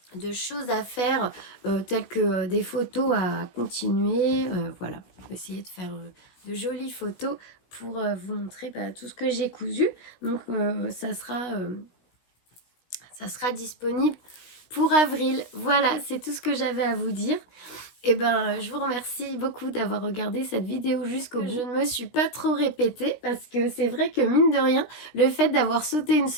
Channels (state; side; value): late; right; 16 ms